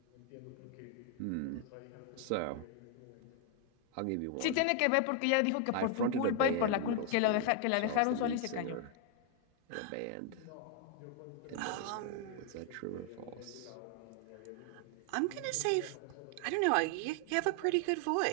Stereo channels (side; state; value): both; different; correlation 0.00